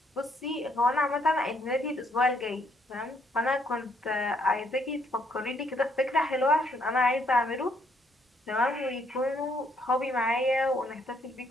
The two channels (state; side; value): normal; both; correlation 0.70